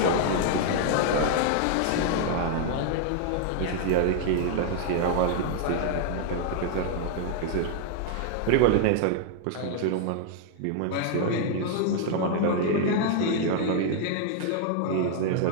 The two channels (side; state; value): both; different; correlation 0.00